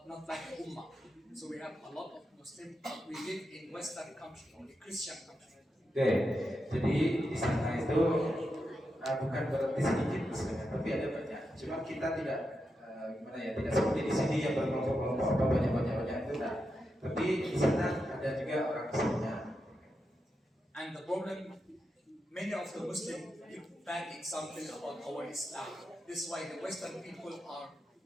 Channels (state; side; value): normal; both; correlation 0.87